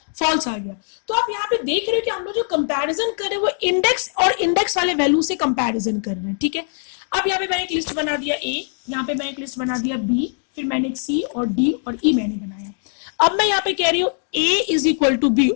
फॉल्स आ गया। तो आप यहाँ पे देख रहे हो कि हम लोग जो कंपैरिजन कर रहे हैं वो इंडेक्स और इंडेक्स वाले वैल्यू से कंपैरिजन कर रहे हैं, ठीक है। अब यहाँ पे मैंने एक लिस्ट बना दिया A, यहाँ पे मैंने एक लिस्ट बना दिया B, फिर मैंने एक C और D और E मैंने बनाया। अब मैं यहाँ पे कह रही हूँ A is equal to B,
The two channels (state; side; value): silent; right; 56 dB below the other